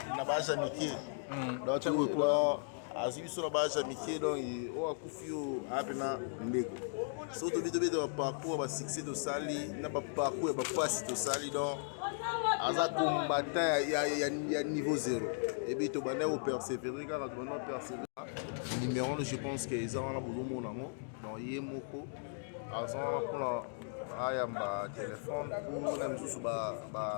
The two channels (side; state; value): right; silent; digital silence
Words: na basa miki donc azubiso na basa miki donc o akufio apena ndeko so to bito bito parcours ba succès to sali na ba parcours ba passe to sali donc aza combattant ya niveau 0 et bito bana au persévérer car tu vas persévérer numéro je pense que ils ont la boulot nango donc yemoko azana pour la ayamba téléphone pour même sous ba